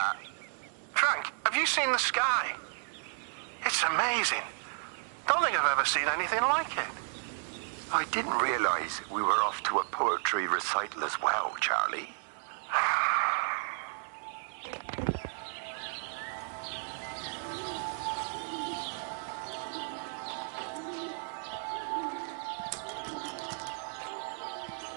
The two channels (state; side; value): silent; left; 56 dB below the other